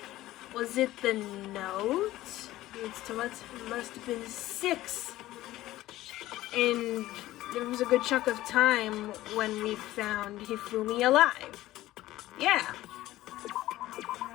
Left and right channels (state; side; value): quieter; right; 15.9 dB